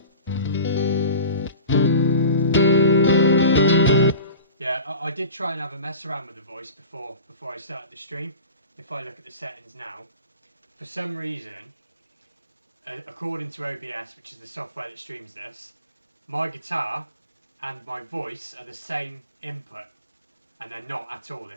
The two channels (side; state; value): both; inverted; correlation -0.38